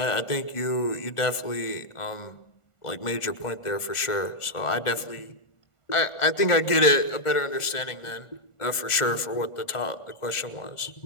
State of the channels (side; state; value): right; late; 1.4 ms